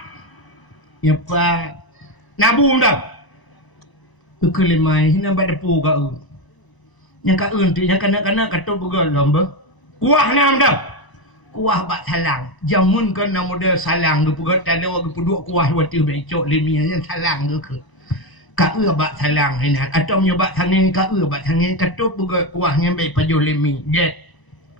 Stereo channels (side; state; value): right; late; 1.0 ms